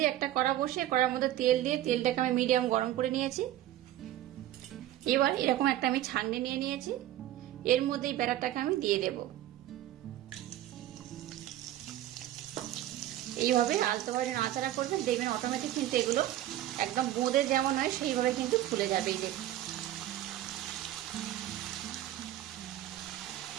একটা কড়া বসিয়ে কড়ার মধ্যে তেল দিয়ে তেলটাকে আমি মিডিয়াম গরম করে নিয়েছি। এবার এরকম একটা আমি ছাঁকনি নিয়ে নিয়েছি, এর মধ্যে এই ব্যাটারটাকে আমি দিয়ে দেব। এইভাবে আলতোভাবে নাড়াচাড়া করবেন, দেখবেন অটোমেটিক কিন্তু এগুলো একদম বোঁদে যেমন হয় সেইভাবে কিন্তু ফুলে যাবে। এই দেখুন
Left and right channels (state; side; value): quieter; left; 13.5 dB